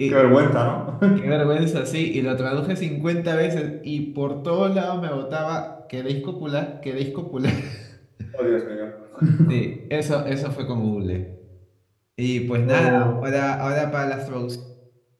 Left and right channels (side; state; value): both; identical; correlation 1.00